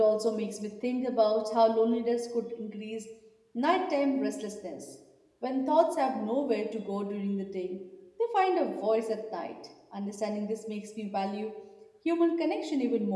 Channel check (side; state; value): both; identical; correlation 1.00